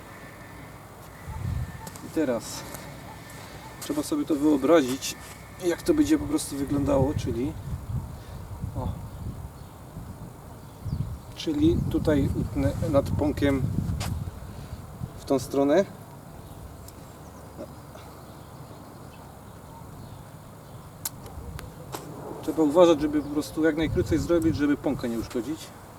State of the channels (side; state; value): both; identical; correlation 1.00